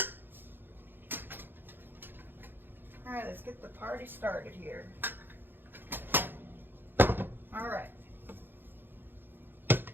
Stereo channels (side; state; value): left; late; 0.099 ms